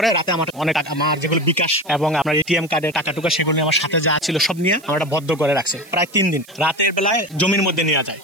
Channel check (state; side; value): noise; right; hiss, 24 dB below the sound